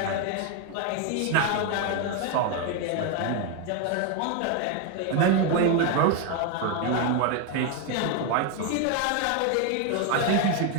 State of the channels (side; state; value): both; different; correlation 0.02